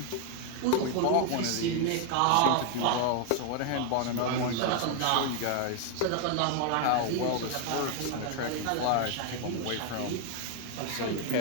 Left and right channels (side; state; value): both; different; correlation 0.00